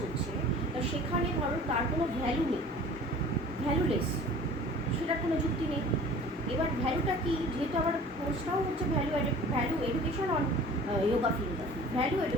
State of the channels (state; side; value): normal; both; correlation 0.45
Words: হচ্ছে, তা সেখানে ধরো তার কোনো ভ্যালু নেই, ভ্যালুলেস, সেটার কোনো যুক্তি নেই। এবার ভ্যালুটা কি, যেহেতু আবার কোর্সটাও হচ্ছে value education on yoga philosophy. Value